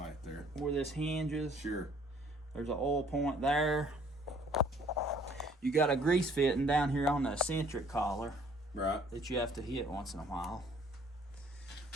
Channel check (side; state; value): both; normal; correlation 0.58